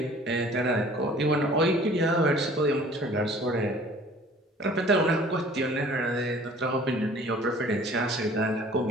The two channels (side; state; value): both; normal; correlation 0.50